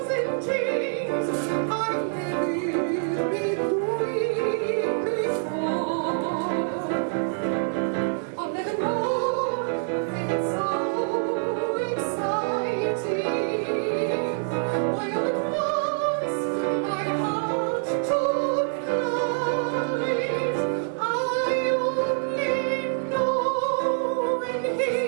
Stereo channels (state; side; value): silent; left; digital silence